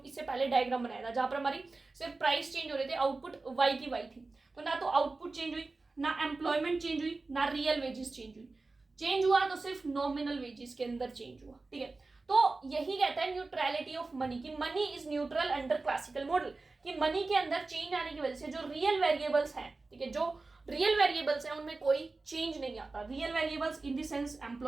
इससे पहले डायग्राम बनाया था, जहां पर हमारी सिर्फ प्राइस चेंज हो रहे थे, आउटपुट वाई की वाई थी। तो ना तो आउटपुट चेंज हुई, ना एम्प्लॉयमेंट चेंज हुई, ना रियल वेजेस चेंज हुई। चेंज हुआ तो सिर्फ नॉमिनल वेजेस के अंदर चेंज हुआ। ठीक है, तो यही कहता है न्यूट्रलिटी ऑफ मनी, की money is neutral under classical model, कि मनी के अंदर चेंज आने की वजह से जो रियल वेरिएबल्स हैं, ठीक है, जो रियल वेरिएबल्स हैं उनमें कोई चेंज नहीं आता। Real variables in the sense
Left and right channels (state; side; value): quieter; left; 3.6 dB